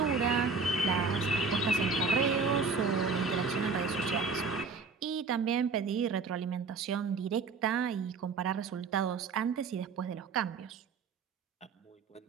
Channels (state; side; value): quieter; left; 4.7 dB